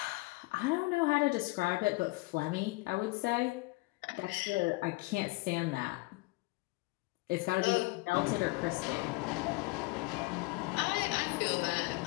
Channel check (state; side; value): quieter; right; 23.9 dB